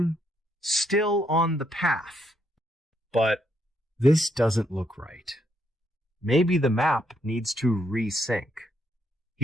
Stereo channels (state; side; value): normal; both; correlation 0.75